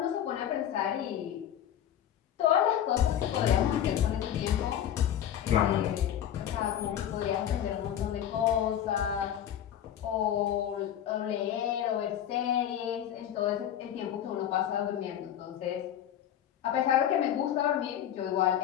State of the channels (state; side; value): quieter; right; 10.4 dB